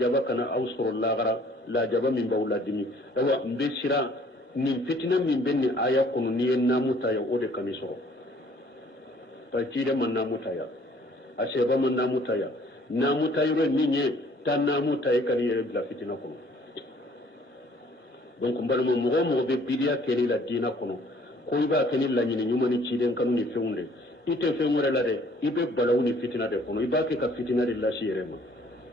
kana ausoro lagara la jaba min bawla dimi dawa mbe sira min fitina min benni aya kunu ni namuta ya ode kamisoro pa cide man namuta ya aseba man namuta ya namuta yoro minye tan namuta ya kan yere la fitina kunu donc mbalmo mo be bidia keni la dina kono ko iba keni la nyini nyuma ni ciden kanu ni feunde ite feungore la de ibe balawni fitina de kono iba ke ka fitina de la shirema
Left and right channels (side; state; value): both; normal; correlation 0.58